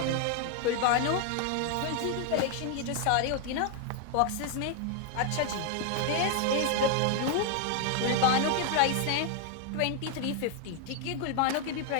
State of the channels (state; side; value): different; both; correlation 0.00